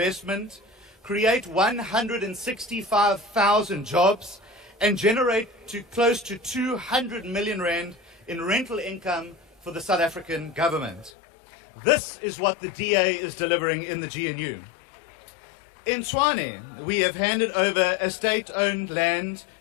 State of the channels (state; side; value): drops out; right; at 11.1 s